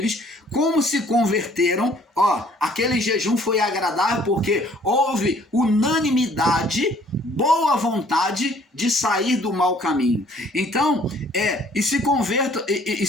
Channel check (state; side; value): normal; both; correlation 0.58